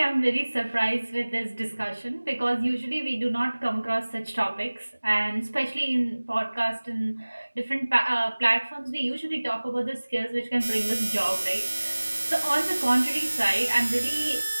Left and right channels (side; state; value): both; inverted; correlation -1.00